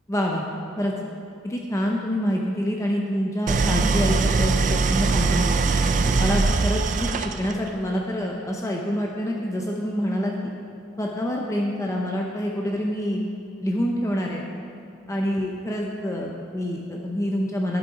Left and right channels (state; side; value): normal; both; correlation 0.78